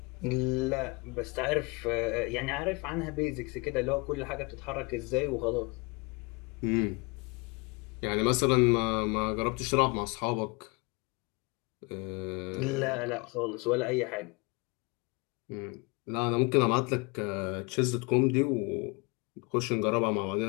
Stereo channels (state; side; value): quieter; right; 28.6 dB